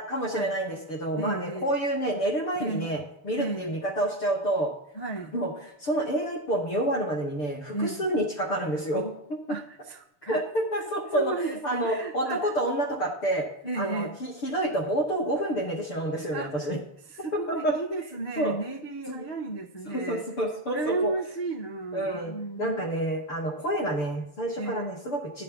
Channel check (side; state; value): right; late; 6.8 ms